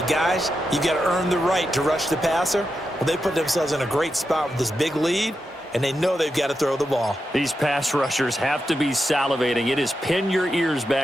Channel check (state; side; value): normal; both; correlation 0.87